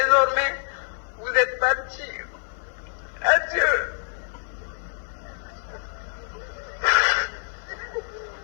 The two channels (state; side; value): silent; right; 61 dB below the other